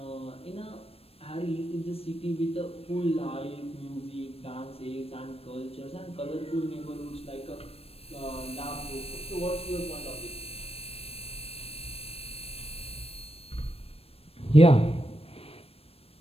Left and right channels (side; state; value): right; late; 0.28 ms